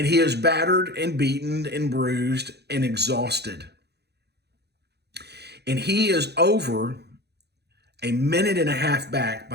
he is battered and beaten and bruised and exhausted. And he is over a minute and a half back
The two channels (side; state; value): left; late; 0.48 ms